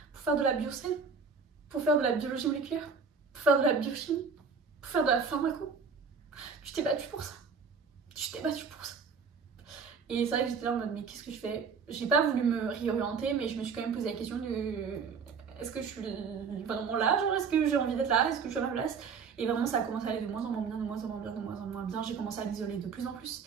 Pour faire de la biocelle. Pour faire de la biologie moléculaire. Pour faire de la biochimie. Pour faire de la pharmaco. Tu t'es battue pour ça. Tu t'es battue pour ça. Et c'est vrai que j'étais là en mode, mais qu'est-ce que je fais? J'ai pas voulu me réorienter, mais je me suis quand même posé la question de est-ce que je suis vraiment là? Genre, est-ce que j'ai envie d'être là? Est-ce que je suis à ma place? Et vraiment, ça a commencé à aller de moins en moins bien, J'ai commencé à m'isoler de plus en plus.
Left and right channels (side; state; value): left; quieter; 5.5 dB